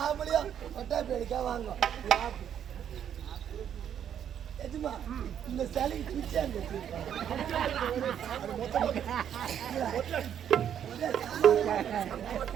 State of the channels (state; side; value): quieter; left; 9.3 dB